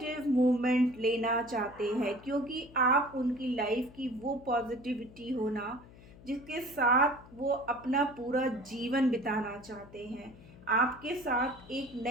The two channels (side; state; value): left; noise; hum, 21 dB below the sound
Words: मूवमेंट लेना चाहते हैं, क्योंकि आप उनकी लाइफ की वो पॉजिटिविटी हो ना जिसके साथ वो अपना पूरा जीवन बिताना चाहते हैं, आपके साथ एक